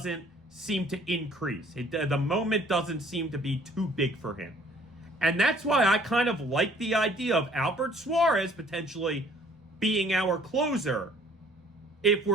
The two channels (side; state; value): both; normal; correlation 0.57